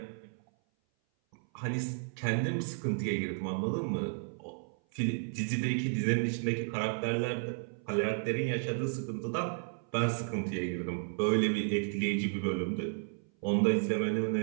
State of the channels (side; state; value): left; silent; 56 dB below the other